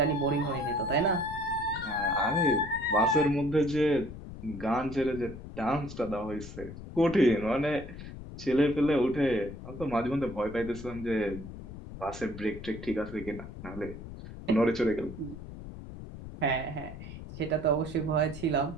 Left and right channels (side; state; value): left; noise; rumble, 12 dB below the sound